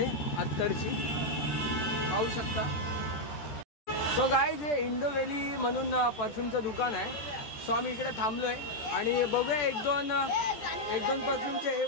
अत्तरची, पाहू शकता. सो गाईज, हे इंडो व्हॅली म्हणून परफ्यूमचं दुकान आहे. सो आम्ही इकडे थांबलोय आणि बघूया एक दोन परफ्यूमचे हे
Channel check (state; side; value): late; right; 14 ms